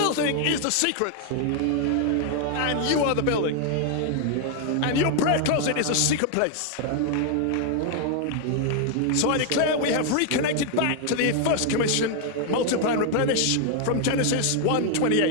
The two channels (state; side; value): different; both; correlation 0.00